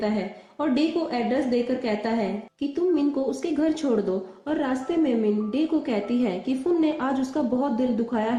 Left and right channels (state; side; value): identical; both; correlation 1.00